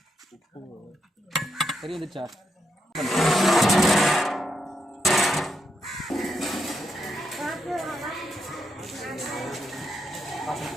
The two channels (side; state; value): both; normal; correlation 0.81